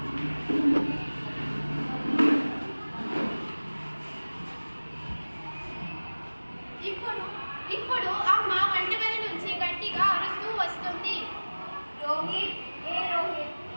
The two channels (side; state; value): both; inverted; correlation -1.00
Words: ఇప్పుడు అమ్మ వంటగది నుంచి గట్టిగా అరుస్తూ వస్తుంది. రోహిత్